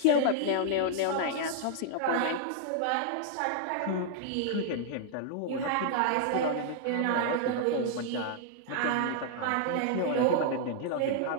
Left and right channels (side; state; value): both; different; correlation -0.01